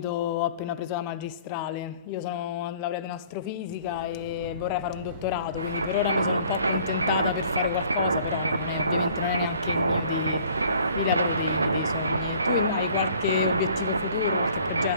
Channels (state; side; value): inverted; both; correlation -0.54